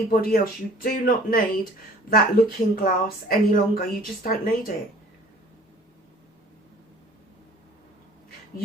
else. You do not need that looking glass any longer. You just don't need it.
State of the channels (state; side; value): normal; both; correlation 0.51